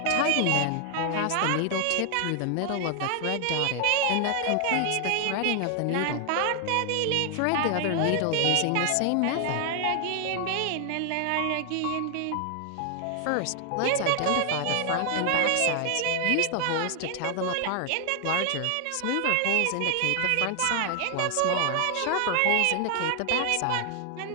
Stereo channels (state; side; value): different; both; correlation 0.00